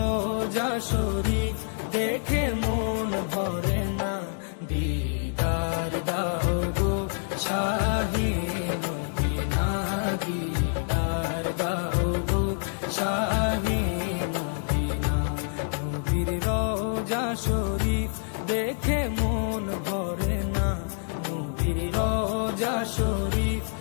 শরীফ দেখে মন ভরে না। দিদার দাও গো শাহে মদিনা, দিদার দাও গো শাহে মদিনা। নবীর রওজা শরীফ দেখে মন ভরে না, নবীর রওজা শরীফ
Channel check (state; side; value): silent; right; 60 dB below the other